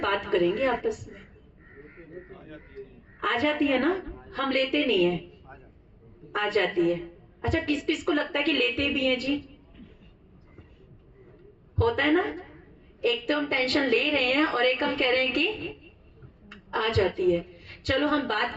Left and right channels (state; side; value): identical; both; correlation 1.00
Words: बात करेंगे आपस में। आ जाती है ना, हम लेते नहीं है, आ जाती है। अच्छा, किस किस को लगता है कि लेते भी हैं जी? होता है ना, एक तो हम टेंशन ले रहे हैं और एक हम कह रहे हैं कि आ जाती है। चलो हम बात